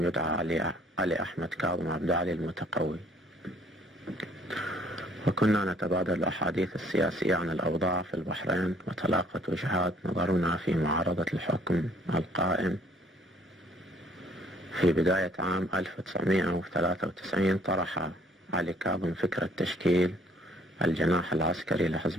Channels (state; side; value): normal; both; correlation 0.60